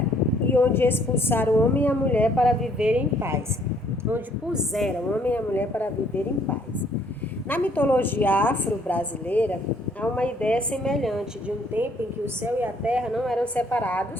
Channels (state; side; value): normal; both; correlation 0.64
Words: e onde expulsaram o homem e a mulher para viver em paz. Onde puseram o homem e a mulher para viver em paz. Na mitologia afro-brasileira, há uma ideia semelhante de um tempo em que o céu e a terra não eram